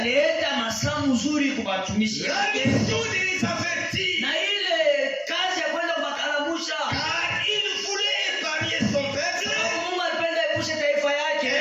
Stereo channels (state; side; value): identical; both; correlation 1.00